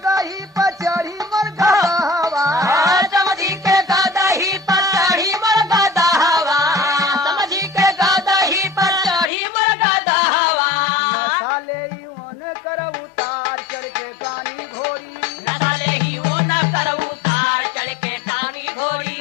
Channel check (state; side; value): drops out; right; at 9.3 s